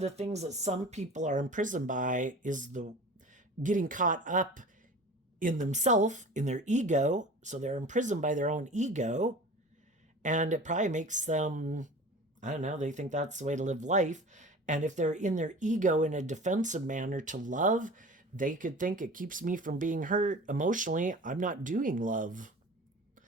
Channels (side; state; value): both; normal; correlation 0.39